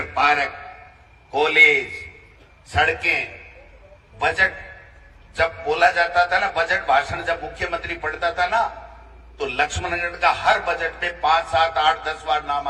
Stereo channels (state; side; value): identical; both; correlation 1.00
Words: पार्क, कॉलेज, सड़कें, बजट जब बोला जाता था ना, बजट भाषण जब मुख्यमंत्री पढ़ता था ना, तो लक्ष्मणगढ़ का हर बजट में 5, 7, 8, 10 बार नाम